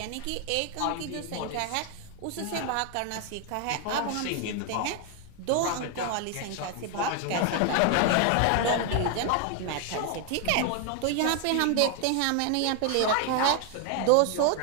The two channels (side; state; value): both; different; correlation 0.00